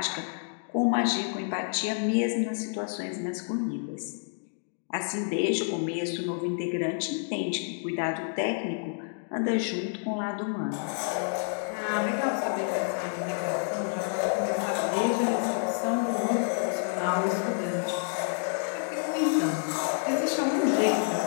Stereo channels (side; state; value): right; silent; 59 dB below the other